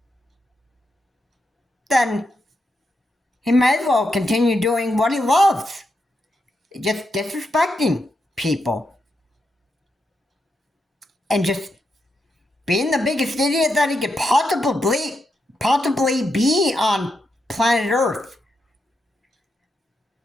then he may as well continue doing what he loves. Just disrespecting people. And just being the biggest idiot that he could possibly be on planet Earth.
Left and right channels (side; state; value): both; normal; correlation 0.84